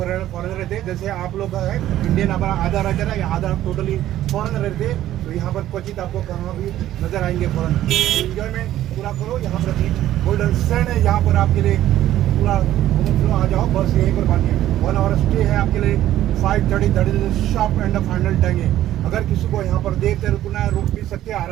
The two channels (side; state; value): left; quieter; 13.1 dB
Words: रहते हैं। जैसे आप लोग है इंडियन हमारा आधा रहता है, आधा टोटली फॉरेनर रहते हैं। तो यहाँ पर क्वचित आपको कहाँ भी नजर आएंगे फॉरेनर। एंजॉयमेंट पूरा करो। यहाँ पर बीच गोल्डन सैंड है, यहाँ पर आपके लिए पूरा आ जाओ। बस यहीं पर बाकी 1 आवर स्टे है आपके लिए। 5:30 शॉप एंड फाइनल टाइम है। अगर किसी को यहाँ पर देख कर रुकना है, रुक भी सकते हैं